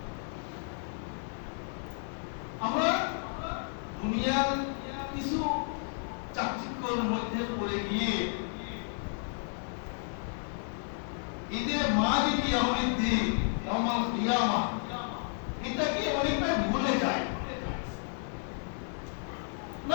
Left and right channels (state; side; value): silent; right; 56 dB below the other